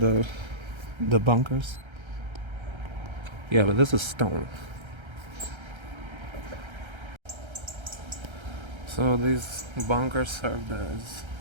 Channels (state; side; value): late; left; 1.3 ms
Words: bunkers. Yeah, but this is stone. So these bunkers served as,